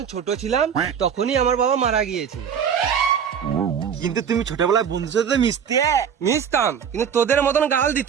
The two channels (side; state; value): left; quieter; 7.6 dB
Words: ছোট ছিলাম তখনই আমার বাবা মারা গিয়েছে। কিন্তু তুমি ছোটবেলায় বন্ধুর সাথে মিশতে। মিশতাম, কিন্তু তোদের মতন গাল